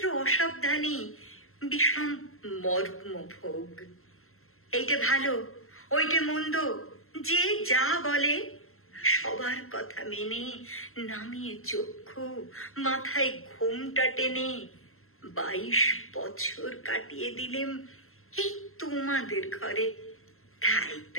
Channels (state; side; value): late; right; 0.62 ms